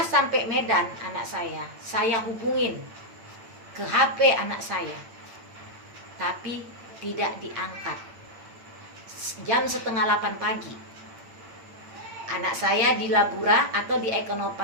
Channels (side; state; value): left; late; 8.9 ms